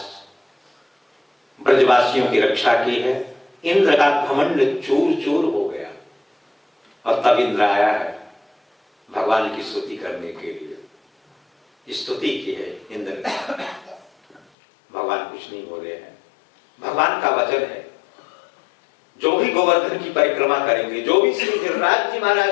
ब्रजवासियों की रक्षा की है। इंद्र का घमंड चूर चूर हो गया और तब इंद्र आया है भगवान की स्तुति करने के लिए। स्तुति की है इंद्र ने। भगवान कुछ नहीं बोले हैं। भगवान का वचन है, जो भी गोवर्धन की परिक्रमा करेंगे, जो भी श्री गिरिराज जी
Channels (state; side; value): drops out; right; at 14.4 s